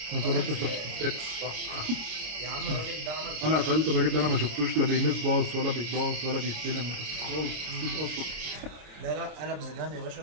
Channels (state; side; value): late; left; 26 ms